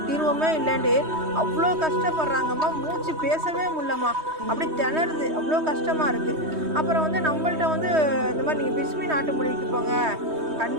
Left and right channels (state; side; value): late; left; 3.2 ms